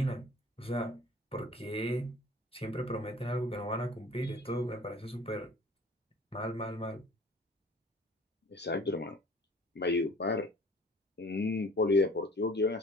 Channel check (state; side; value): normal; both; correlation 0.48